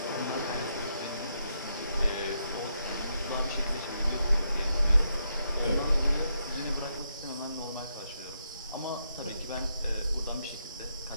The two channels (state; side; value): inverted; both; correlation -0.80